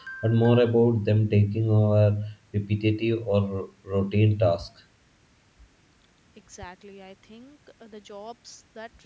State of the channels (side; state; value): both; identical; correlation 1.00